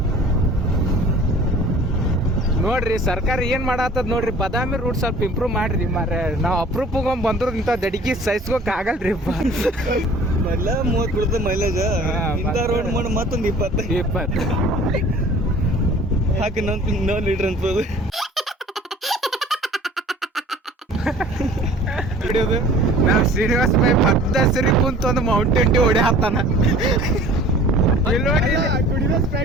ನೋಡ್ರಿ ಸರ್ಕಾರ ಏನ್ ಮಾಡತ್ತದ ನೋಡ್ರಿ, ಬಾದಾಮಿ ರೂಟ್ ಸ್ವಲ್ಪ ಇಂಪ್ರೂವ್ ಮಾಡ್ರಿ ಮಾರ. ನಾವು ಅಪ್ರೂಪ್ ಬಂದ್ರು ಇಂಥ ದಡಿಗೆ ಸಹಿಸ್ಕೋಕ್ ಆಗಲ್ರಿ. ಮೊದ್ಲ 30 ಬಿಡ್ತದೆ ಮೈಲೇಜ್. ಇಂಥ ರೋಡ್ ಮಾಡಿ ಮತ್ತೊಂದು 20 ಹಾಕಿ ನೋ ಲೀಟರ್ ಅನ್ಬೋದು. ಹಿಡಿಯೋದು ನಾವು ಶ್ರೀನಿವಾಸ ಬೈ ಬದ್ದಸರಿ ಕುಂತ ಒಂದು ಮೌಂಟೇನ್ ಡ್ಯೂ ಹೊಡೆ ಹಾಕ್ತಾನ.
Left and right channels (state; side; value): normal; both; correlation 0.48